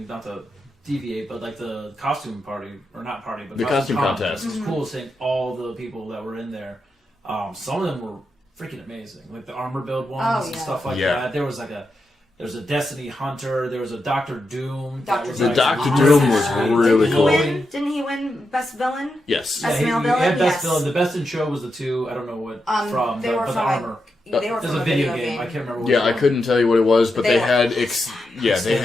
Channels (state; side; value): normal; both; correlation 0.86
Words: Not to deviate, but like the costume party, or not party, but The costume contest contest. was cool. Seeing all the people that were in there. Some of them were freaking amazing, like the armor build ones and stuff like that. There was a Destiny Hunter. There was a Doctor Doom. The Doctor Doom was really cool. Didn't he win Best Villain? Yes. Best male he villain? had Best Villain. The Best in Show was the two. I don't know what from. They were the from armor. They were There's from a video game. I can't remember what I couldn't tell you what it was, but they had... they